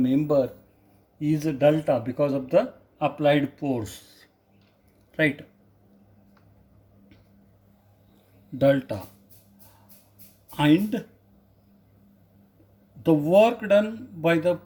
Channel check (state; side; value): identical; both; correlation 1.00